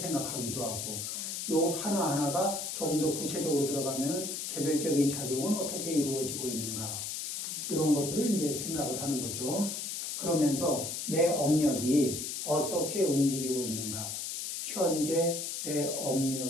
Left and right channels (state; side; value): noise; left; hiss, 4 dB below the sound